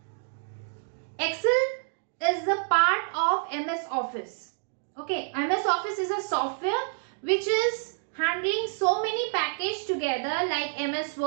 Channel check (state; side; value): silent; left; digital silence